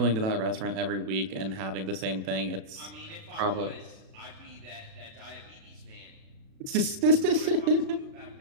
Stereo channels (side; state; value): left; late; 36 ms